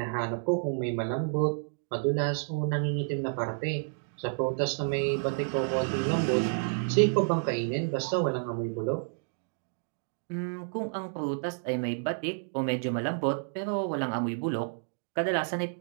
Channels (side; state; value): left; silent; digital silence